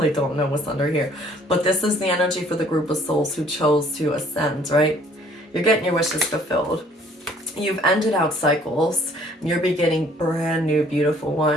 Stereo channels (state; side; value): normal; both; correlation 0.59